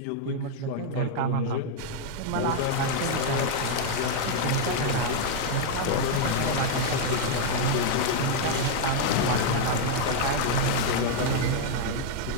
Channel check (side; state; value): both; different; correlation 0.00